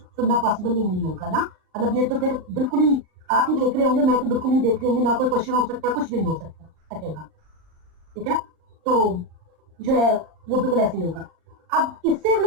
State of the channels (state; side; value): late; left; 39 ms